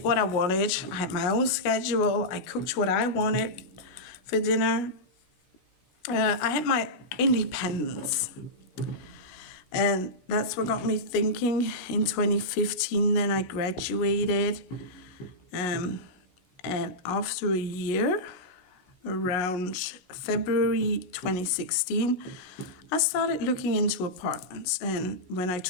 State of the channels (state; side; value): late; right; 17 ms